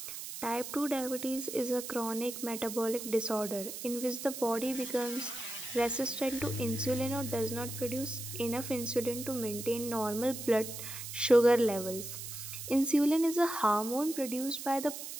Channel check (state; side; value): noise; right; hiss, 8 dB below the sound